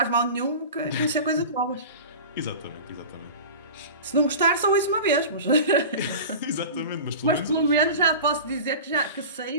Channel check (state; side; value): inverted; both; correlation -0.34